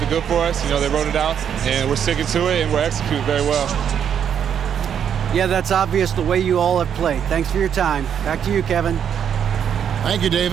good for us. You know, they wrote it out, and we're sticking to it, and we're executing very well. Yeah, that's obvious the way you all have played. Thanks for your time. Back to you, Kevin. Thank you,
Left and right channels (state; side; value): quieter; left; 8.4 dB